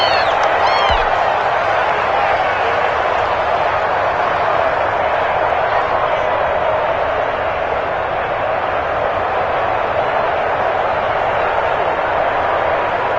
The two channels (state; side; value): identical; both; correlation 1.00